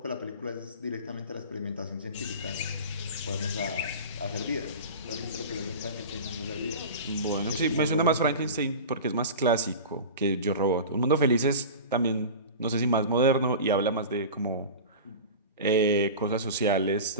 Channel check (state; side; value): inverted; both; correlation -0.32